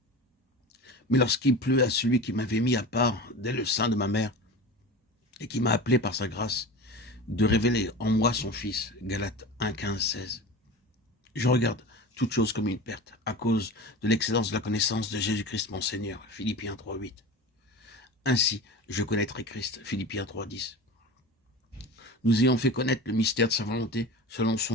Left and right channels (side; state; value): both; normal; correlation 0.31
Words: Mais lorsqu'il plut à celui qui m'avait mis à part dès le sein de ma mère et qui m'a appelé par sa grâce, de révéler en moi son Fils, Galates 1, 15, 16. Je regarde toute chose comme une perte à cause de l'excellence de la connaissance de Jésus-Christ mon Seigneur, Philippiens 3, 8. Ainsi, je connaîtrai Christ, Philippiens 3, 10. Nous ayons fait connaître le mystère de sa volonté selon